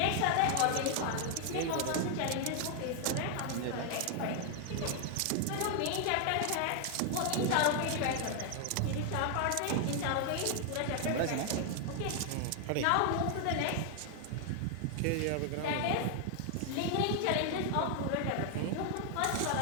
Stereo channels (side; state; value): both; different; correlation 0.00